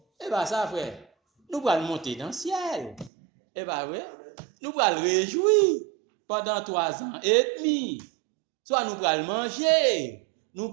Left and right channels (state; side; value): drops out; left; at 3.1 s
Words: eh bien ça frère, nous allons monter dans le ciel. Eh bien oui, nous allons réjouir pendant 3 ans et demi. Soit nous allons manger, nous